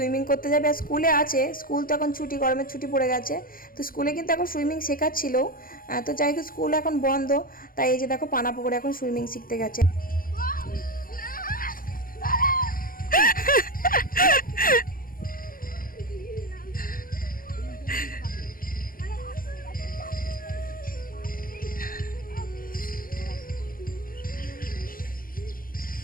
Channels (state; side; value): late; right; 0.41 ms